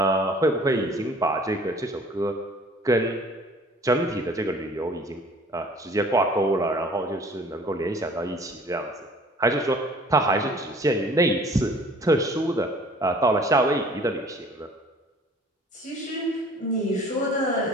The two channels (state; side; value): normal; both; correlation 0.51